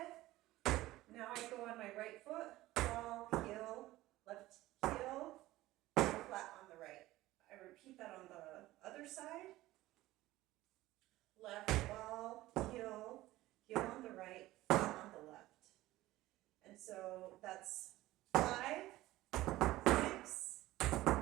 Now I go on my right foot, ball, heel, left heel, flat on the right. I repeat that on the other side. Left ball, heel, heel on the right, flat on the left. And so that's 5, 6,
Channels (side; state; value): left; quieter; 16.9 dB